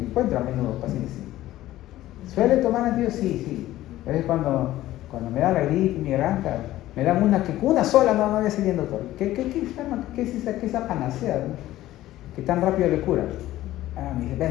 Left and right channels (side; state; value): right; quieter; 15.0 dB